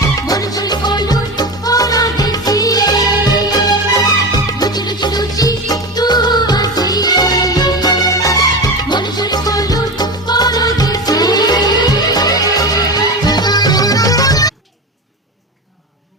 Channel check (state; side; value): normal; both; correlation 0.23